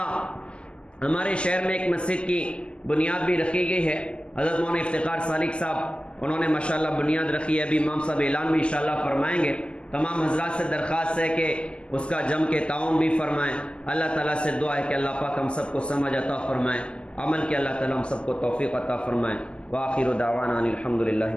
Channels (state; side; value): late; right; 0.051 ms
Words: ہمارے شہر میں ایک مسجد کی بنیاد بھی رکھی گئی ہے، حضرت مولانا افتخار سالک صاحب انہوں نے ماشاءاللہ بنیاد رکھی ہے، ابھی امام صاحب اعلان بھی انشاءاللہ فرمائیں گے۔ تمام حضرات سے درخواست ہے کہ اس کا جم کے تعاون بھی فرمائیں۔ اللہ تعالیٰ سے دعا ہے کہ اللہ پاک ہم سب کو سمجھ عطا فرمائیں، عمل کے اللہ تعالیٰ ہم سب کو توفیق عطا فرمائیں۔ وآخر دعوانا ان الحمد للہ